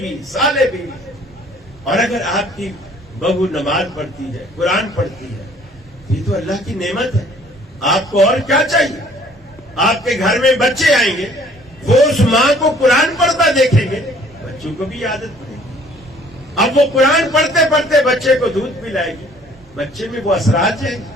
صالح بیوی. اور اگر آپ کی بہو نماز پڑھتی ہے، قرآن پڑھتی ہے، یہ تو اللہ کی نعمت ہے. آپ کو اور کیا چاہیے؟ آپ کے گھر میں بچے آئیں گے، وہ اس ماں کو قرآن پڑھتا دیکھیں گے، بچوں کو بھی عادت پڑے گی. اب وہ قرآن پڑھتے پڑھتے بچے کو دودھ پلائے گی، بچے میں وہ اثرات جائیں گے.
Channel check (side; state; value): both; normal; correlation 0.57